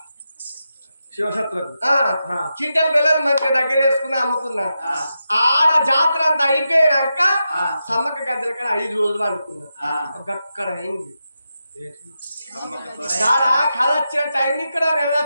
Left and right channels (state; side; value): inverted; both; correlation -0.88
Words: శివశత్రుకు చింతల బెల్లం మంచిగా దగ్గర వేసుకుని అమ్ముకున్నా ఆడ జాతర అంతా అయిపోయాక సమ్మక్క గద్దెల కాడ 5 రోజులు అనుకున్నా అక్కడ అయింది కళ వచ్చిన టైం ఇక్కడ